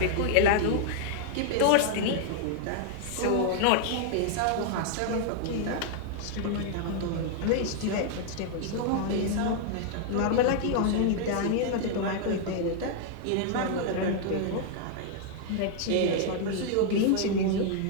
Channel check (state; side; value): different; both; correlation -0.01